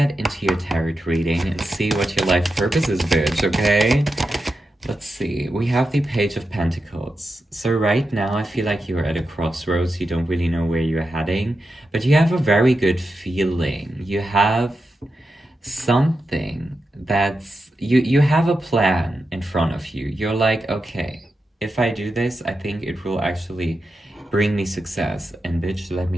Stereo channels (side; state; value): both; normal; correlation 0.89